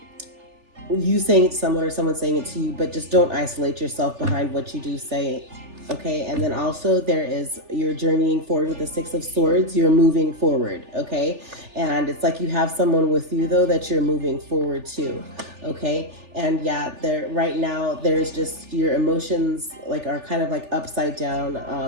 you saying it to someone or someone saying it to you. But just don't isolate yourself behind what you do say, okay? And then also you're journeying forward with the Six of Swords. You're moving forward, okay? And it's like you have someone with you though that you're moving forward to, okay? And yeah, right now there's just your emotions are kind of like upside down.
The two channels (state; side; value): late; left; 3.4 ms